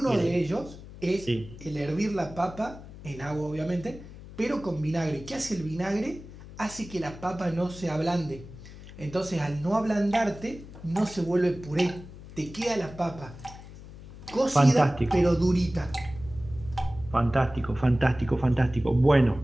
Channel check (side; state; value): left; noise; hum, 16 dB below the sound